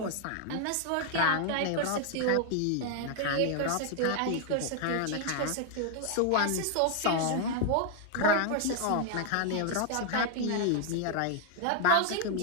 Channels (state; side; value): different; both; correlation 0.00